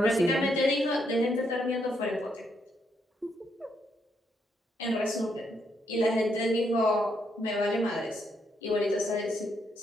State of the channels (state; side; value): normal; both; correlation 0.76